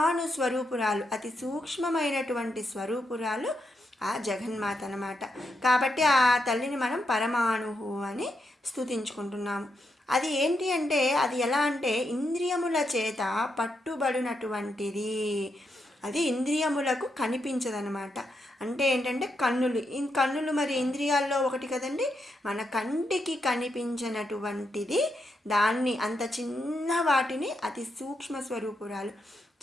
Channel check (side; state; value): both; normal; correlation 0.82